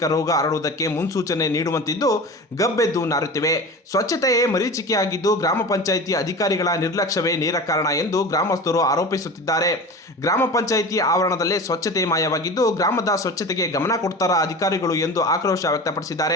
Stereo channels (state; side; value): normal; both; correlation 0.33